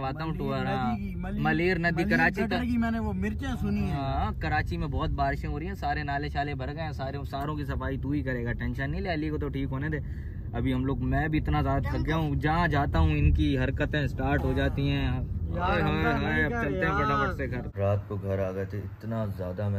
हूँ टूर। मलेर नदी कराची की मैंने वो मिर्चें सुनी है। हाँ कराची में बहुत बारिशें हो रही हैं, सारे नाले शाले भर गए हैं, सारों की सफाई तू ही करेगा, टेंशन नहीं ले। अली को तो ठीक होने दे। अभी हम लोग, मैं भी इतना ज्यादा थक गया हूँ, जहाँ जाता हूँ इनकी हरकतें स्टार्ट हो जाती हैं। अब चलते हैं फटाफट से घर। रात को घर आ गए थे, इतना ज्यादा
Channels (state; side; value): identical; both; correlation 1.00